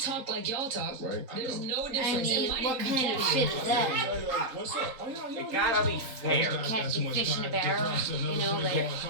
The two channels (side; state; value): left; late; 4.2 ms